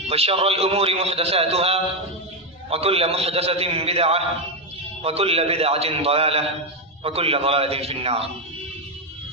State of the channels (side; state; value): both; normal; correlation 0.05